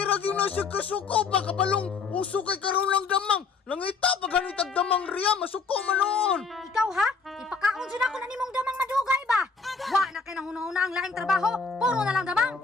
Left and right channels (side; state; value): right; quieter; 4.7 dB